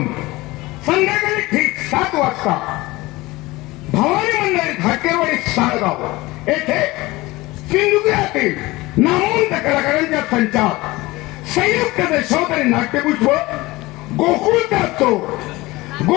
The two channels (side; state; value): right; quieter; 20.6 dB